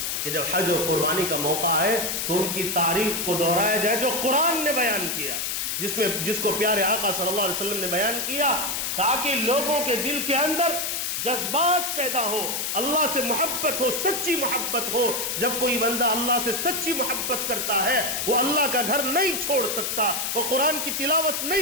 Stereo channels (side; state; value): left; noise; hiss, 1 dB below the sound